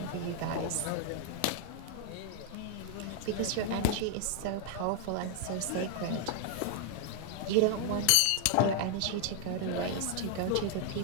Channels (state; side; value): different; both; correlation 0.00